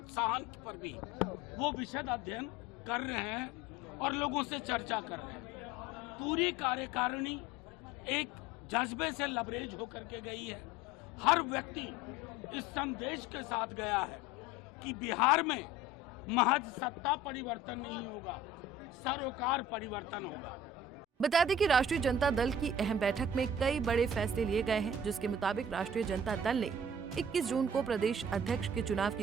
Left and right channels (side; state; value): both; normal; correlation 0.43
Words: पर भी वो विशद अध्ययन कर रहे हैं और लोगों से चर्चा कर रहे हैं। पूरी कार्यकारिणी एक जज्बे से लबरेज होकर के गई है। हर व्यक्ति इस संदेश के साथ गया है कि बिहार में महज सत्ता परिवर्तन नहीं होगा, सरोकार परिवर्तन होगा। बता दें कि राष्ट्रीय जनता दल की अहम बैठक में कई बड़े फैसले लिए गए हैं, जिसके मुताबिक राष्ट्रीय जनता दल ने 21 जून को प्रदेश अध्यक्ष के चुनाव